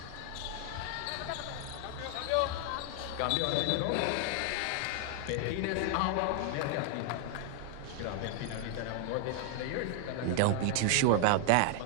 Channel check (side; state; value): both; different; correlation 0.00